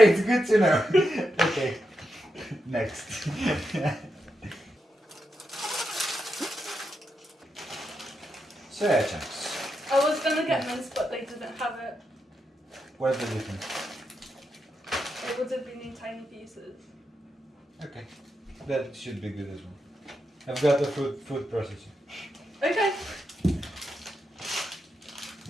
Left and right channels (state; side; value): normal; both; correlation 0.85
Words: good to know. Okay, next. Soya chunks. I was gonna get mince, but they didn't have it. What's the difference? It would have been in tiny pieces. Okay, that should be good as well. I've got the food processor. Okay.